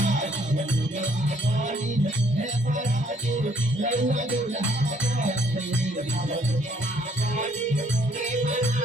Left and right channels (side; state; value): both; normal; correlation 0.65